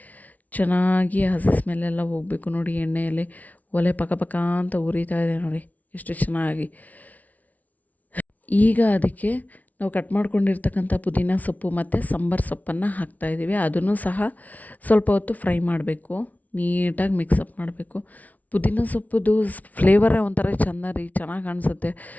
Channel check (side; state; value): right; late; 0.073 ms